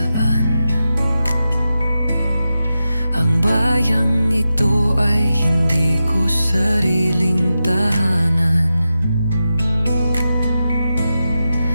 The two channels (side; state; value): both; inverted; correlation -0.91